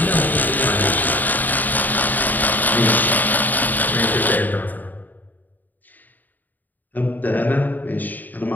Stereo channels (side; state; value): right; late; 0.086 ms